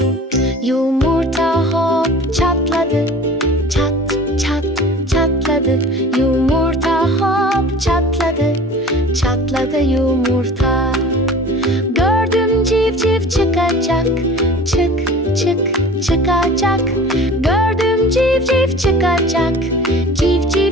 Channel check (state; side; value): normal; both; correlation 0.42